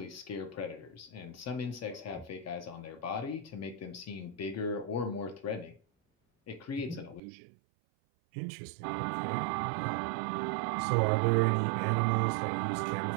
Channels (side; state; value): left; drops out; at 7.2 s